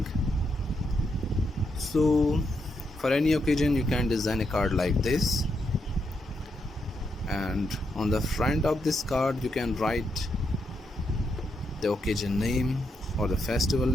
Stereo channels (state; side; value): normal; both; correlation 0.81